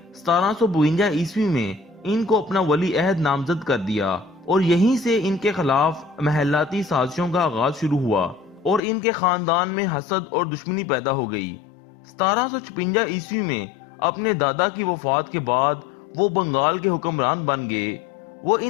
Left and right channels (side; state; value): right; drops out; at 8.8 s